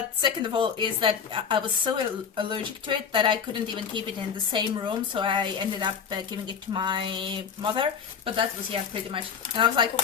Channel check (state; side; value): quieter; right; 6.8 dB